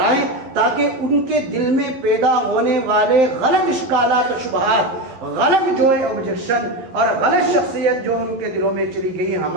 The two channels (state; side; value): late; left; 11 ms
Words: تاکہ ان کے دل میں پیدا ہونے والے غلط اشکالات و شبہات، غلط جو ہے آبجیکشن اور غلط شخصیت جو ان کے دلوں میں چلی گئی